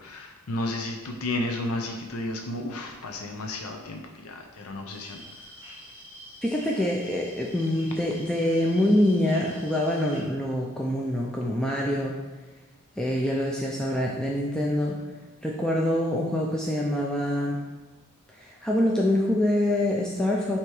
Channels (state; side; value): normal; both; correlation 0.74